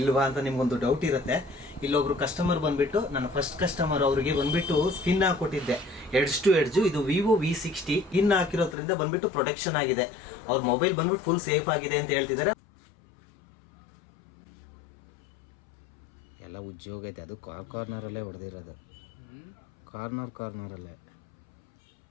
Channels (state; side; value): drops out; right; at 8.8 s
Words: ಅಂತ ನಿಮ್ಗೊಂದು ಡೌಟ್ ಇರುತ್ತೆ. ಇಲ್ಲೊಬ್ರು ಕಸ್ಟಮರ್ ಬಂದ್ಬಿಟ್ಟು, ನನ್ನ ಫಸ್ಟ್ ಕಸ್ಟಮರ್, ಅವ್ರಿಗೆ ಬಂದ್ಬಿಟ್ಟು ಸ್ಕಿನ್ ಹಾಕೊಟ್ಟಿದ್ದೆ ಎಡ್ಜ್ ಟು ಎಡ್ಜ್. ಇದು ವಿವೋ V60 ಸ್ಕಿನ್ ಹಾಕಿರೋದ್ರಿಂದ ಬಂದ್ಬಿಟ್ಟು ಪ್ರೊಟೆಕ್ಷನ್ ಆಗಿದೆ. ಅವ್ರ ಮೊಬೈಲ್ ಬಂದ್ಬಿಟ್ಟು ಫುಲ್ ಸೇಫ್ ಆಗಿದೆ ಅಂತ ಹೇಳ್ತಿದ್ದಾರೆ. ಎಲ್ಲ ಉದ್ಯೋಗ ಐತೆ, ಅದು ಕಾರ್ನರಲ್ಲೇ ಹೊಡೆದಿರೋದು, ಕಾರ್ನರಲ್ಲೇ.